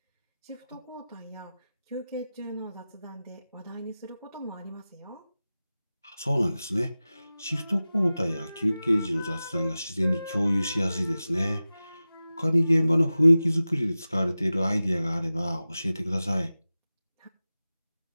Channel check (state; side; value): inverted; both; correlation -0.96